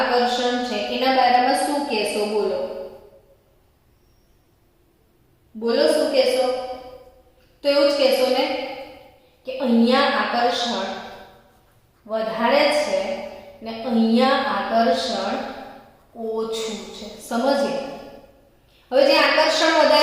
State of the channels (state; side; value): identical; both; correlation 1.00